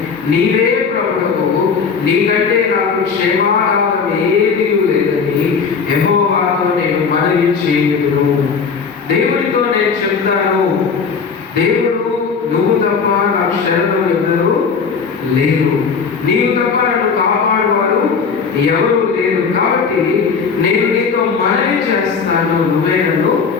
నీవే ప్రభువు, నీకంటే నాకు క్షేమారాధన ఏదీ లేదని యెహోవాతో నేను మనవి చేయుదును. దేవుడితో నేను చెప్తాను, దేవుడు నువ్వు తప్ప నాకు శరణు ఎవరు లేరు, నీవు తప్ప నన్ను కాపాడువారు ఎవరు లేరు. కాబట్టి నేను నీతో మనవి చేస్తాను, నువ్వే నన్ను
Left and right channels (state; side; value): quieter; right; 5.6 dB